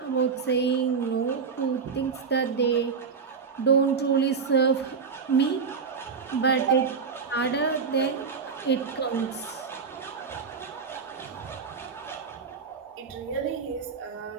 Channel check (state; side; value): quieter; left; 5.6 dB